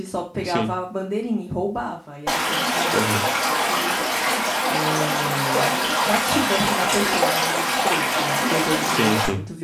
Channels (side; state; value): both; identical; correlation 1.00